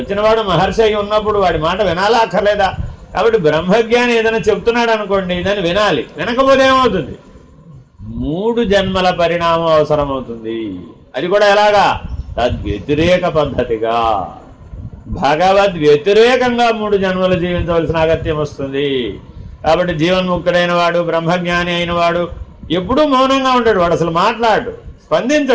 మహర్షి అయి ఉన్నప్పుడు వాడి మాట వినాలా అక్కర్లేదా? కాబట్టి బ్రహ్మజ్ఞాని ఏదైనా చెప్తున్నాడు అనుకోండి, దాన్ని వినాలి. వినకపోతే ఏమవుతుంది? 3 జన్మల పరిణామం అవసరమవుతుంది. అది కూడా ఎలాగా? తద్వ్యతిరేక పద్ధతిగా, భగవద్ వ్యతిరేకంగా 3 జన్మలు జీవించవలసిన అగత్యం వస్తుంది. కాబట్టి జీవన్ముక్తుడైన వాడు, బ్రహ్మజ్ఞాని అయిన వాడు ఎప్పుడూ మౌనంగా ఉంటాడు. వాడు అసలు మాట్లాడు,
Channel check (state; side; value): identical; both; correlation 1.00